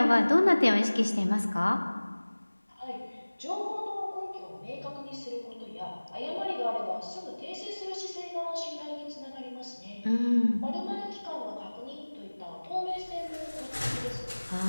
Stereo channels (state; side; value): inverted; both; correlation -1.00